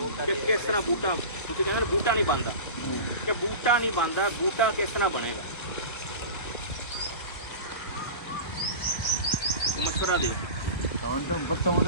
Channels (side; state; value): right; late; 1.3 ms